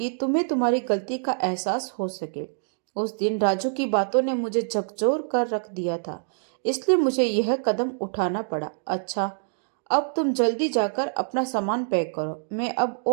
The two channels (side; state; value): left; silent; digital silence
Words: तुम्हें तुम्हारी गलती का एहसास हो सके। उस दिन राजू की बातों ने मुझे झकझोर कर रख दिया था, इसलिए मुझे यह कदम उठाना पड़ा। अच्छा, अब तुम जल्दी जाकर अपना सामान पैक करो, मैं अब